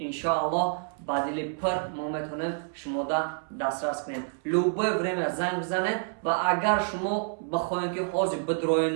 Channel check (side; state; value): left; silent; 59 dB below the other